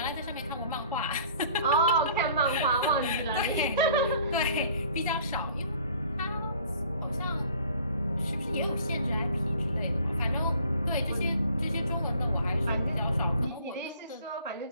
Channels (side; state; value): both; inverted; correlation -0.52